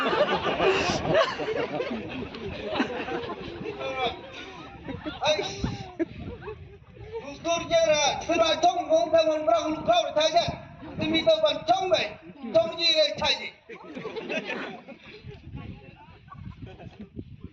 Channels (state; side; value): identical; both; correlation 1.00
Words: Ai, tôi chơi ra, tôi nói thông không theo mình ra không khâu để thay chứ. Tôi mi tôi vẫn thông vậy, thông gì đây thay gì?